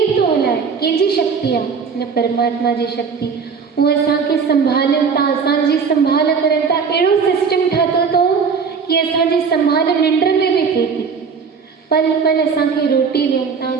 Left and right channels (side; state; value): left; quieter; 5.7 dB